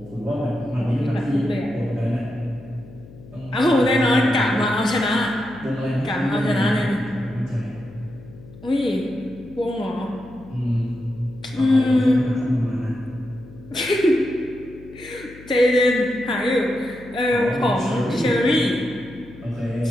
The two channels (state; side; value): noise; left; hum, 19 dB below the sound